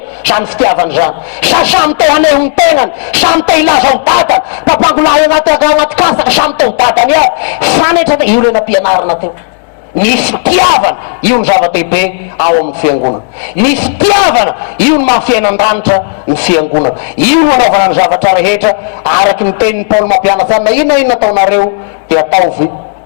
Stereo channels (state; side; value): silent; right; digital silence